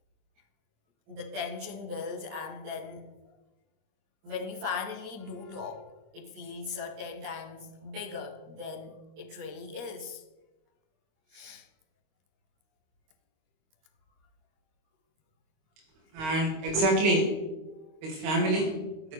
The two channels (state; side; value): late; left; 25 ms